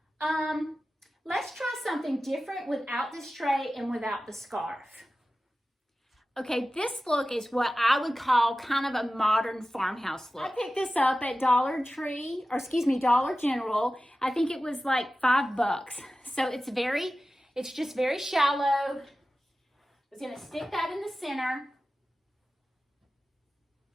let's try something different without this tray and without the scarf. Okay, this look is what I would call kind of a modern farmhouse look. I picked this up at Dollar General. I think it was like $5. So it's just very shallow. I was gonna stick that in the center.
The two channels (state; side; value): normal; both; correlation 0.95